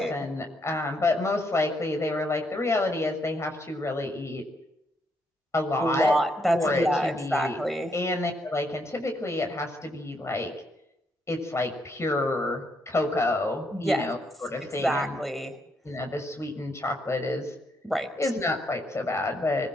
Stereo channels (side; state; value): both; normal; correlation 0.75